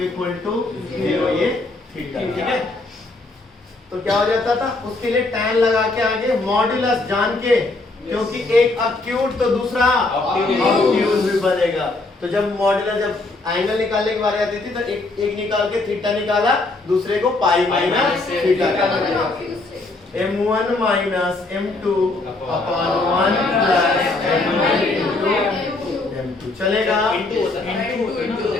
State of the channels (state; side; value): quieter; right; 3.2 dB